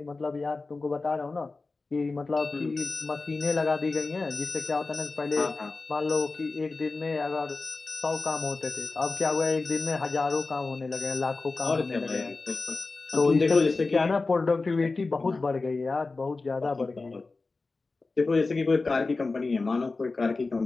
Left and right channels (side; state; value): right; quieter; 3.7 dB